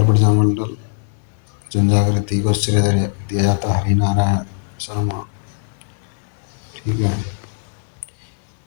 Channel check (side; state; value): right; silent; digital silence